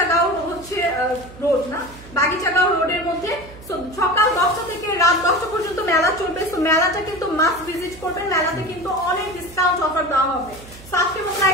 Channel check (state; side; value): noise; right; hum, 19 dB below the sound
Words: হচ্ছে রোড না, বাগিচাগাঁও রোডের মধ্যে। সকাল 10টা থেকে রাত 10টা পর্যন্ত মেলা চলবে। তো মেলাটা কিন্তু মাস্ট ভিজিট করবেন। মেলাতে কিন্তু অনেক ডিসকাউন্ট অফার দেওয়া হবে। আজকের মতো